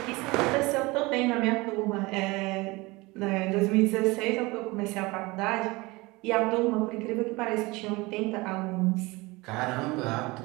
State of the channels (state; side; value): quieter; left; 23.1 dB